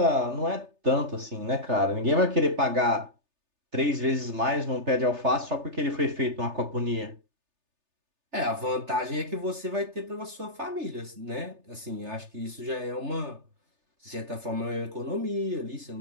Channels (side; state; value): left; late; 3.3 ms